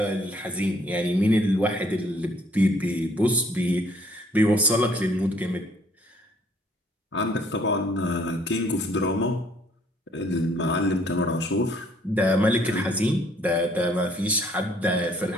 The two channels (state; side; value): normal; both; correlation 0.62